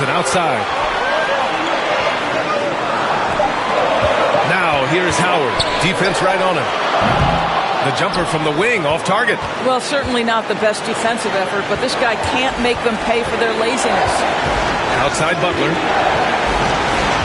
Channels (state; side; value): identical; both; correlation 1.00